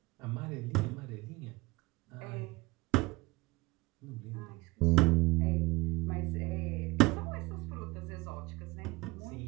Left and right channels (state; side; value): quieter; left; 22.6 dB